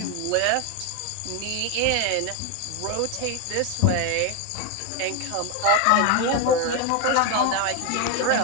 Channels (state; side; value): different; both; correlation 0.01